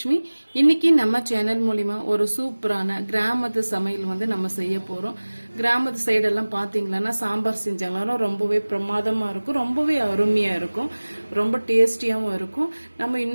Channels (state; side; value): inverted; both; correlation -1.00